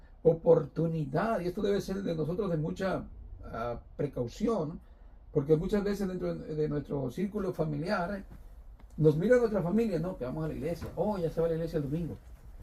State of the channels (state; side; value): identical; both; correlation 1.00